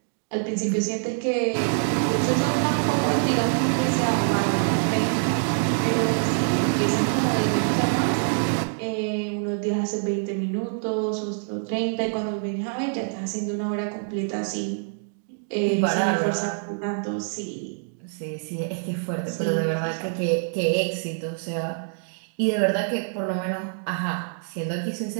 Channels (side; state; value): left; silent; digital silence